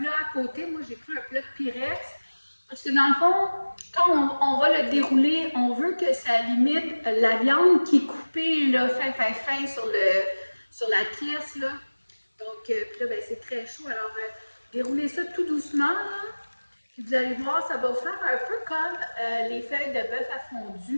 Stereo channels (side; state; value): both; inverted; correlation -1.00